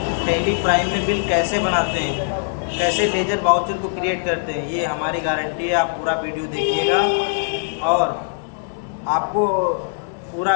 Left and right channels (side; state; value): right; silent; digital silence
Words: टैली प्राइम में बिल कैसे बनाते हैं, कैसे लेजर वाउचर को क्रिएट करते हैं, ये हमारी गारंटी है। आप पूरा वीडियो देखिएगा और आपको पूरा